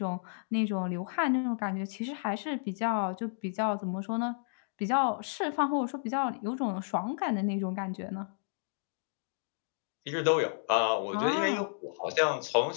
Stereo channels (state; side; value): silent; right; digital silence